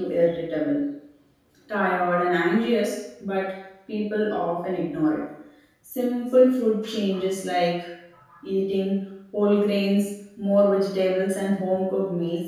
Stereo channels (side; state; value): both; identical; correlation 1.00